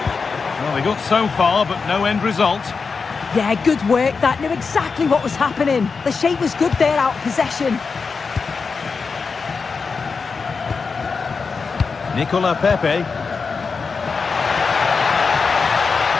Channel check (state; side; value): quieter; right; 5.0 dB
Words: Well, they got so far, but no end result. Yeah, good work. That knew exactly what was happening. The shape was good there, out of possession. Nicola Pepe.